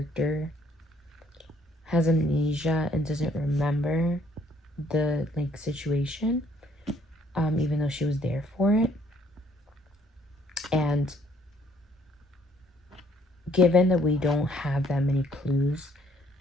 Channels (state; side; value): normal; both; correlation 0.64